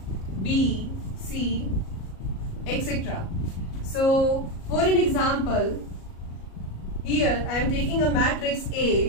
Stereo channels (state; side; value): late; right; 37 ms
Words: B, C, etc. So for an example, here I am taking a matrix A